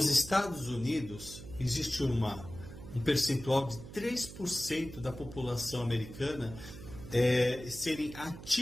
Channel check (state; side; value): noise; right; hum, 14 dB below the sound